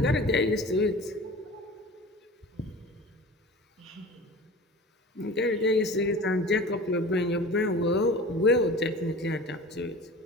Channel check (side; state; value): both; normal; correlation 0.38